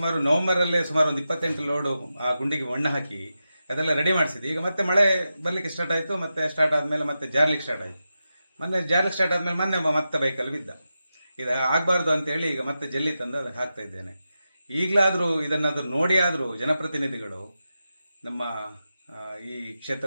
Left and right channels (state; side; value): inverted; both; correlation -0.90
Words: ನವೆಂಬರಲ್ಲೇ ಸುಮಾರು ಒಂದು 28 ಲೋಡು ಆ ಗುಂಡಿಗೆ ಮಣ್ಣು ಹಾಕಿ ಅದೆಲ್ಲ ರೆಡಿ ಮಾಡಿಸಿದ್ವಿ. ಈಗ ಮತ್ತೆ ಮಳೆ ಬರಲಿಕ್ಕೆ ಸ್ಟಾರ್ಟ್ ಆಯಿತು. ಮತ್ತೆ ಸ್ಟಾರ್ಟ್ ಆದಮೇಲೆ ಮತ್ತೆ ಜಾರ್ಲಿಕ್ಕೆ ಸ್ಟಾರ್ಟ್ ಆಯಿತು. ಜಾರ್ಲಿಕ್ಕೆ ಸ್ಟಾರ್ಟ್ ಆದಮೇಲೆ ಮತ್ತೆ ಬೈಕಲ್ಲಿ ಬಿದ್ದ. ಇದು ಆಗಬಾರ್ದು ಅಂತೇಳಿ ಈಗ ಮತ್ತೆ ಜಲ್ಲಿ ತಂದು ಅದಕ್ಕೆ ಹಾಕ್ತಾ ಇದ್ದೇನೆ. ಈಗಲಾದರೂ ಇದನ್ನಾದರೂ ನೋಡಿ ಆದರೂ ಜನಪ್ರತಿನಿಧಿಗಳು, ನಮ್ಮ ಈ